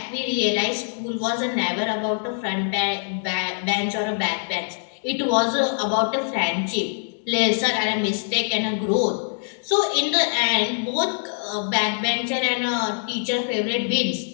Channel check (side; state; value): right; silent; digital silence